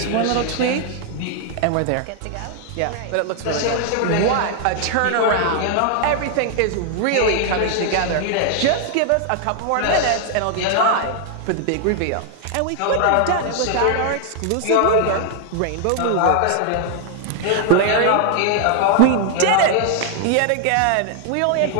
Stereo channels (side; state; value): both; different; correlation 0.00